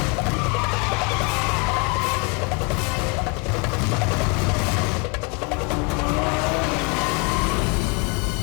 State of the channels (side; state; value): right; quieter; 29.9 dB